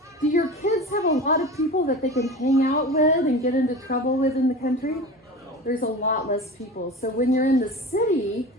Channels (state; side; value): normal; both; correlation 0.33